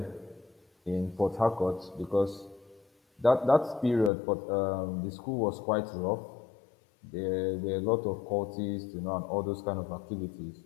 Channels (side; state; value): right; drops out; at 4.1 s